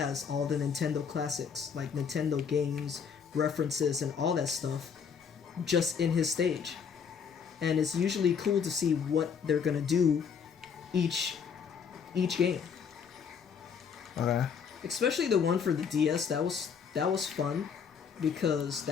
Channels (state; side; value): quieter; right; 6.7 dB